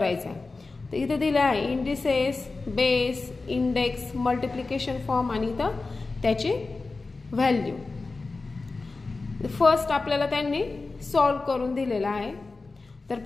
आहे. तर इथे दिला आहे indices, base, index, multiplication form आणि इथं त्याची व्हॅल्यू. फर्स्ट आपल्याला त्यांनी सॉल्व करून दिलेला आहे. तर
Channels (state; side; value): quieter; right; 3.7 dB